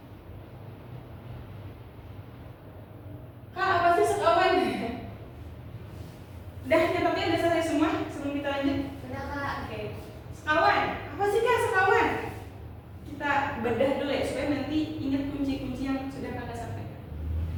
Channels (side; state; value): both; identical; correlation 1.00